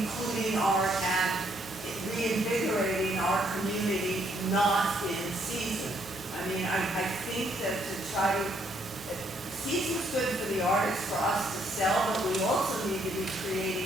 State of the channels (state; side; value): normal; both; correlation 0.70